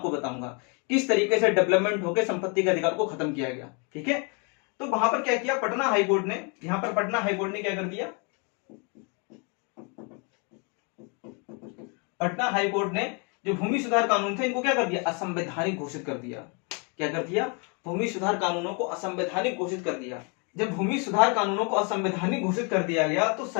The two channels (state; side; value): quieter; right; 34.6 dB